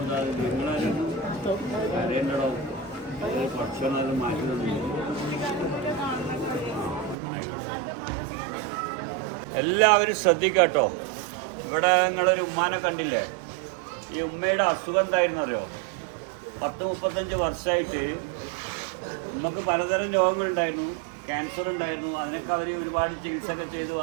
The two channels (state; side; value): drops out; left; at 7.2 s